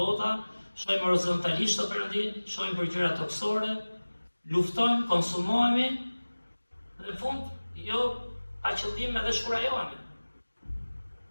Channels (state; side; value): inverted; both; correlation -1.00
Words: shohim horizontalisht o Perëndi, shohim për gjëra toksore, luftojmë, konsumohemi, dhe në fund, jo pa qëllim edhe shkurajohemi.